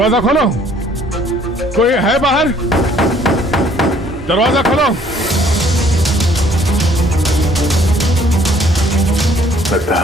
खोलो, कोई है बाहर? दरवाजा खोलो। लगता है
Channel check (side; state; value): both; normal; correlation 0.60